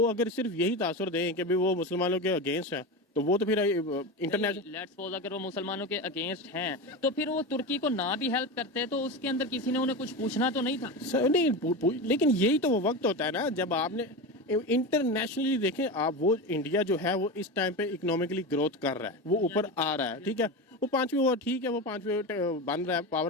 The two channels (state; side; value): normal; both; correlation 0.22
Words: अगर सिर्फ यही तासुर दें कि भाई वो मुसलमानों के अगेंस्ट है, तो वो तो फिर इंटरनेशनल, लेट्स सपोज अगर वो मुसलमानों के अगेंस्ट हैं तो फिर वो तुर्की को ना भी हेल्प करते तो उसके अंदर किसी ने उन्हें कुछ पूछना तो नहीं था? नहीं, लेकिन यही तो वो वक्त होता है ना जब आपने इंटरनेशनली देखें आप, वो इंडिया जो है वो इस टाइम पे इकोनॉमिकली ग्रोथ कर रहा है, वो ऊपर आ रहा है, ठीक है, वो पांचवी, वो ठीक है, वो पांचवी बन रहा है,